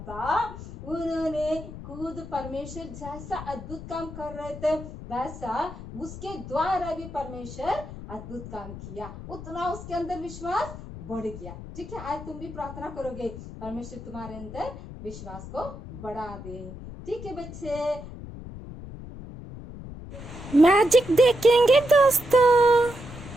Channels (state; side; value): noise; left; rumble, 12 dB below the sound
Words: था, उन्होंने खुद परमेश्वर जैसा अद्भुत काम कर रहे थे वैसा उसके द्वारा भी परमेश्वर अद्भुत काम किया, उतना उसके अंदर विश्वास बढ़ गया। ठीक है, आज तुम भी प्रार्थना करोगे, परमेश्वर तुम्हारे अंदर विश्वास को बढ़ा दे। ठीक है बच्चे, मैजिक देखेंगे दोस्तों।